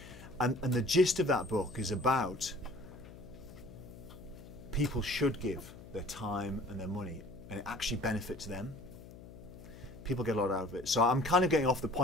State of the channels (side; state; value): left; noise; hum, 16 dB below the sound